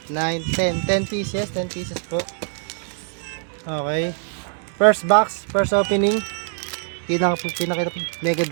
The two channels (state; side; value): silent; left; 59 dB below the other